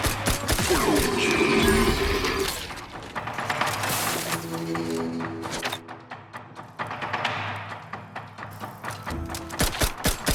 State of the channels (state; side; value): identical; both; correlation 1.00